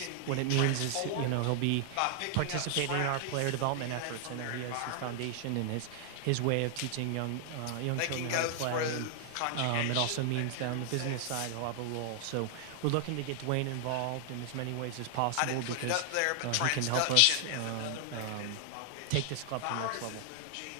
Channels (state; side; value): different; both; correlation 0.00